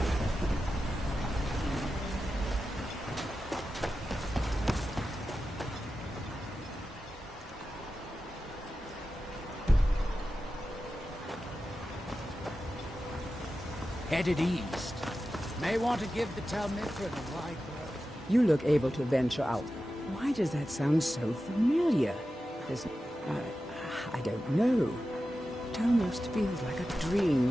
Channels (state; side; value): normal; both; correlation 0.92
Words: Headed east. May want to give the Talmithra the wide berth. You look able to venture out. Why does that sound so familiar? There's... I don't know. It almost feels like a